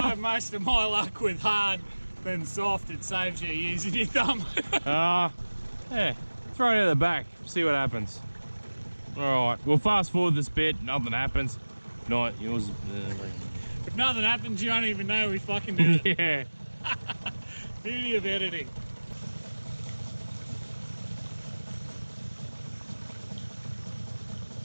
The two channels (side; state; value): both; inverted; correlation -1.00